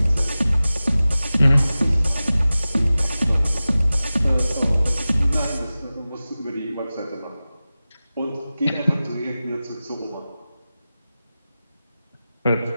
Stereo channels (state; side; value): inverted; both; correlation -0.96